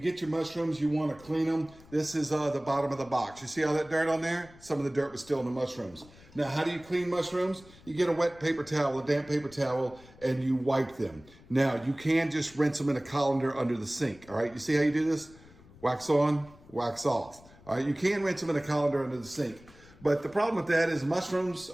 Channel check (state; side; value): noise; left; rumble, 23 dB below the sound